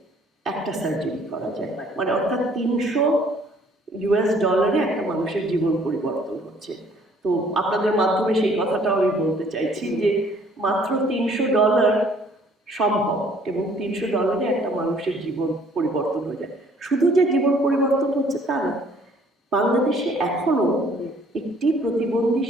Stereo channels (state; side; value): normal; both; correlation 0.59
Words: একটা সার্জারি করা যায়, মানে অর্থাৎ $300 একটা মানুষের জীবন পরিবর্তন হচ্ছে। তো আপনাদের মাধ্যমে সেই কথাটাও আমি বলতে চাইছি যে মাত্র $300 সম্ভব, এবং $300 একটা মানুষের জীবন পরিবর্তন হয়ে যায়। শুধু যে জীবন পরিবর্তন হচ্ছে তা না, বাংলাদেশে এখনো একটি প্রতিবন্ধী